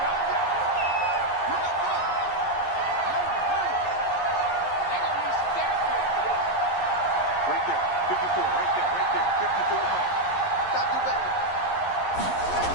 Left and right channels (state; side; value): late; right; 11 ms